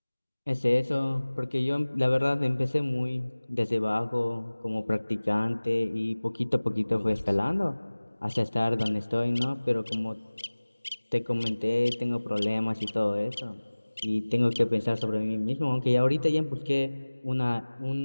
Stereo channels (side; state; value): both; inverted; correlation -1.00